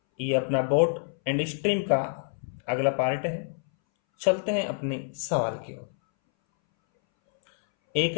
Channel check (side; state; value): right; silent; 60 dB below the other